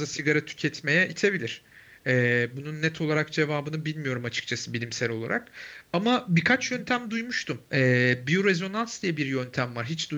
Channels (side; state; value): both; identical; correlation 1.00